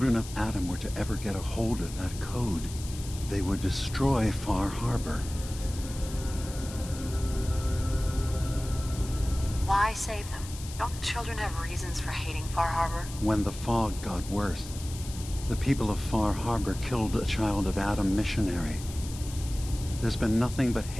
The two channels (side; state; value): left; noise; hiss, 14 dB below the sound